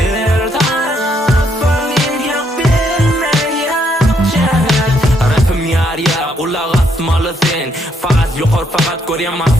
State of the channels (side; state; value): both; normal; correlation 0.73